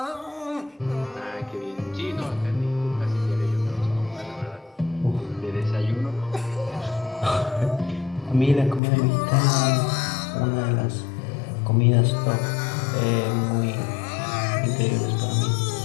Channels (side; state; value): right; drops out; at 8.8 s